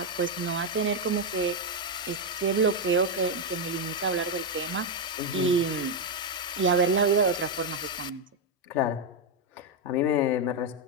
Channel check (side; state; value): both; normal; correlation 0.03